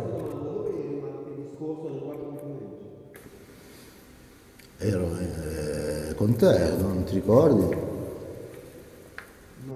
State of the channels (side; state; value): both; identical; correlation 1.00